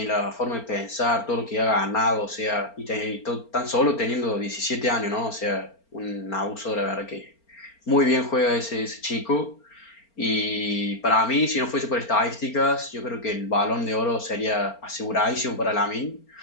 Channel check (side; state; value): right; late; 4.4 ms